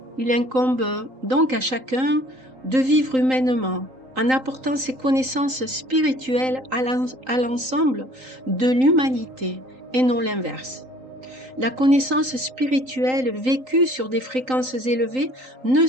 Il incombe donc à chacun de vivre humainement en apportant ses connaissances spirituelles à l'ensemble de l'humanité et non l'inverse. La connaissance spirituelle vécue sur des fréquences élevées ne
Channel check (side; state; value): left; late; 3.8 ms